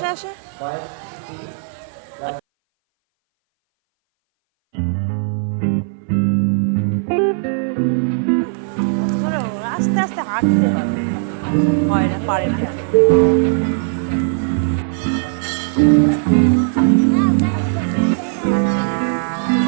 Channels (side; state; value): left; silent; 61 dB below the other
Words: আসো। আস্তে আস্তে হাঁটতে হয় না, পারে না।